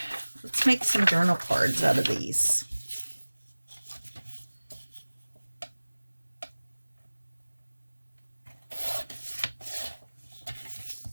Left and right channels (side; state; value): both; inverted; correlation -1.00